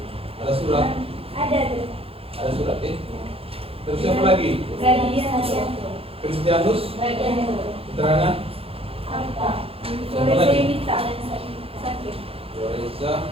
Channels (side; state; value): left; late; 0.27 ms